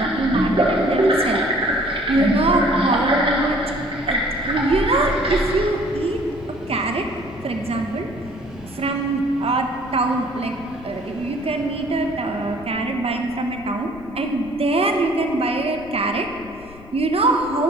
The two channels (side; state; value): left; noise; rumble, 20 dB below the sound